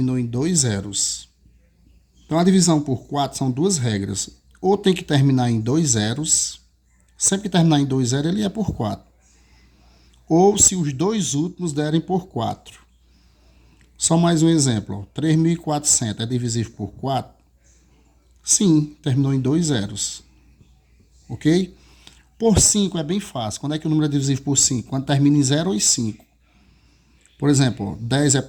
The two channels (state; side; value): identical; both; correlation 1.00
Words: em 2 zeros. Então a divisão por 4 são duas regras. Ou tem que terminar em 2 zeros. Sempre que terminar em 2 zeros ele é por 4. Ou se os dois últimos derem por 4. Só mais um exemplo. 3.400 é divisível por 4? Sim, terminou em 2 zeros. Ok? Por 5 é bem fácil. Quando é que o número é divisível por 5? Quando termina em 0 ou em 5. Por exemplo, 10 é